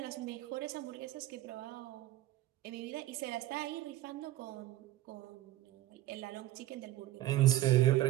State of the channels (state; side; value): quieter; left; 15.3 dB